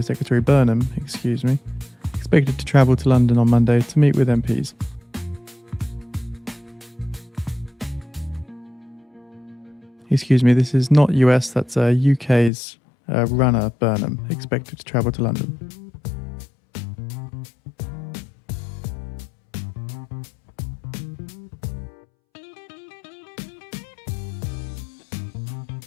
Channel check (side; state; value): right; drops out; at 12.5 s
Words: Secretary Burnham, excuse me. Expected to travel to London on Monday to meet with MPs. Excuse me, this is not US, that's UK's runner Burnham, expected to travel to London.